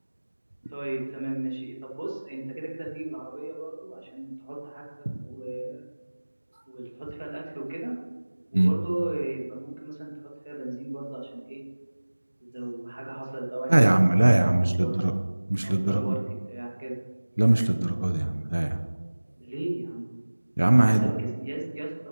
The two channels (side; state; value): both; inverted; correlation -1.00